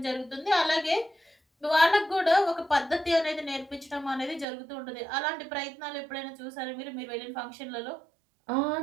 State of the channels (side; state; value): left; drops out; at 4.5 s